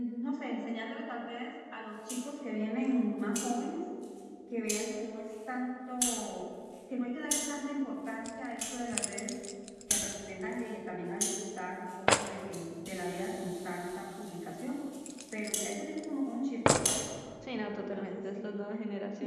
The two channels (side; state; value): both; identical; correlation 1.00